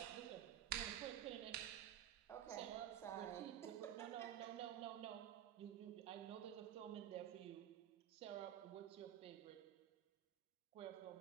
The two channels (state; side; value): quieter; left; 11.0 dB